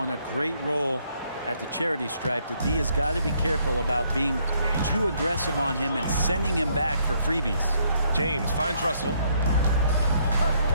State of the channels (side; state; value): both; inverted; correlation -0.70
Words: a great role at the charity stripe. The D has got to be careful about being too aggressive on him and sending him back for freebies. James finds Russell.